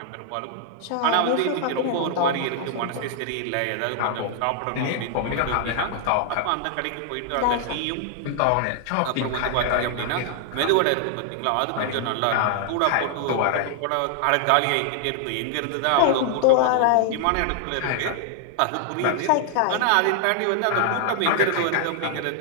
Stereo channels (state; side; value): different; both; correlation 0.00